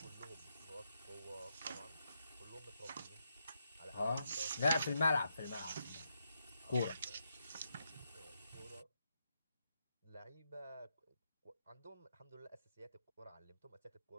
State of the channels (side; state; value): both; inverted; correlation -0.81